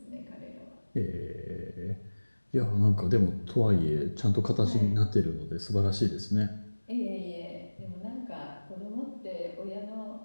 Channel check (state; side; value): inverted; both; correlation -1.00